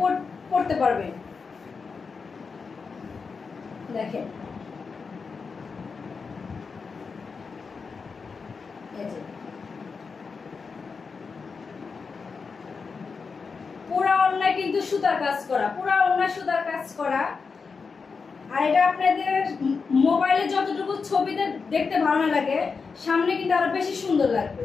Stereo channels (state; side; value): quieter; right; 5.0 dB